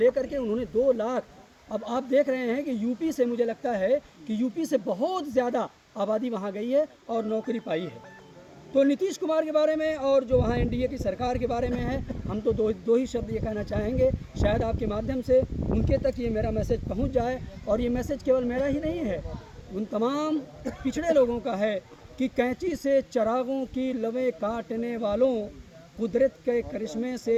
के उन्होंने 2 लाख। अब आप देख रहे हैं कि यूपी से, मुझे लगता है कि यूपी से बहुत ज़्यादा आबादी वहाँ गई है और नौकरी पाई है। तो नीतीश कुमार के बारे में और जो वहाँ एनडीए की सरकार के बारे में है, हम तो दो ही शब्द ये कहना चाहेंगे, शायद आपके माध्यम से उनके तक ये मेरा मैसेज पहुँच जाए। और ये मैसेज केवल मेरा ही नहीं है, उन तमाम पिछड़े लोगों का है कि कैंची से चरागों की लवें काटने वालों, कुदरत के करिश्मे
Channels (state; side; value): identical; both; correlation 1.00